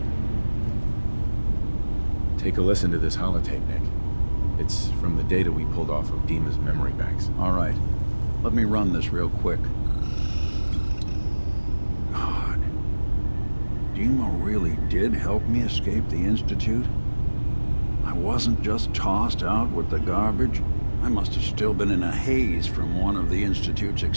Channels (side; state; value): both; inverted; correlation -1.00